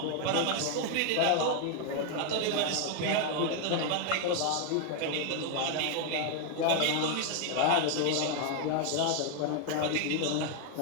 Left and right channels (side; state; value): both; different; correlation 0.00